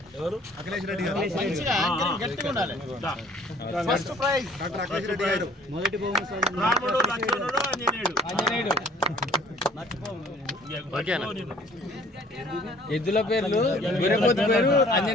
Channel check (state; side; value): normal; both; correlation 0.54